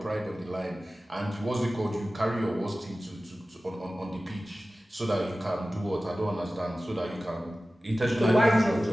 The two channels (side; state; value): both; normal; correlation 0.96